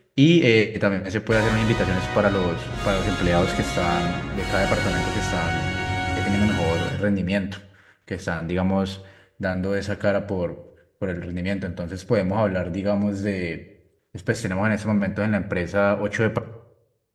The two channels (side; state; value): both; identical; correlation 1.00